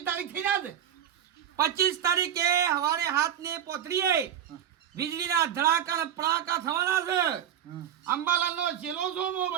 તારીખ થઈ ના 25 તારીખે સવારે 7 ને પોતરીએ વીજળીના ધડાકા ને પડાકા થવાના છે હમ. અંબાલાલનો છેલ્લો સોમો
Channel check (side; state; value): left; quieter; 9.9 dB